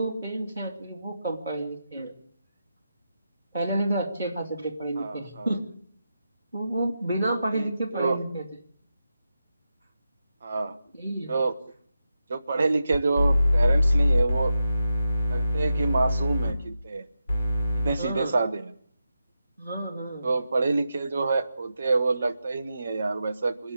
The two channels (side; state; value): both; inverted; correlation -0.88